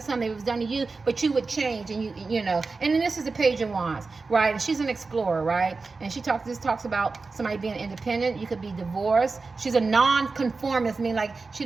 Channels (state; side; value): quieter; left; 4.1 dB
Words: some, maybe it was done to you, but you would change, and you know. And then this is the Page of Wands, right? And she's an explorer, right? And this talks about somebody being independent. You could be divorced. She's a non-conformist, meaning like she